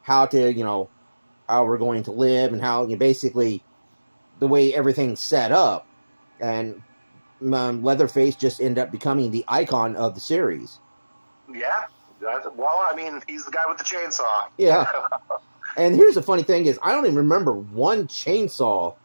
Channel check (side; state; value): both; inverted; correlation -1.00